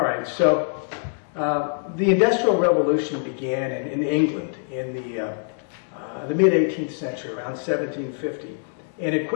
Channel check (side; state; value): right; silent; digital silence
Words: right, so the Industrial Revolution began in England in the mid-18th century, around 1750. And it